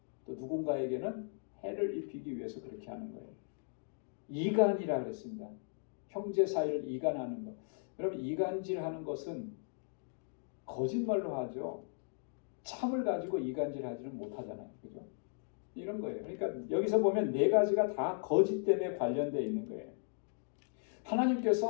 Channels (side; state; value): right; silent; digital silence